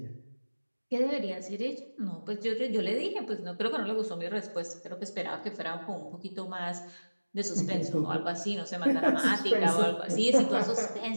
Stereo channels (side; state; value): both; inverted; correlation -1.00